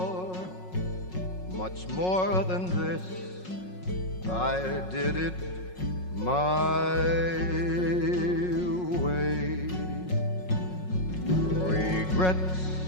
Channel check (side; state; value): right; late; 5.5 ms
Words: much more than this, I did it my way. Regrets,